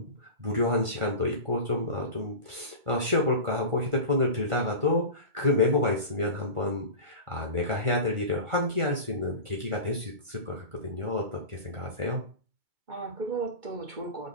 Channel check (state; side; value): late; left; 2.2 ms